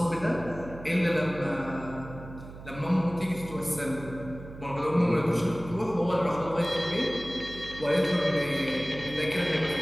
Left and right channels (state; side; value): noise; right; hum, 14 dB below the sound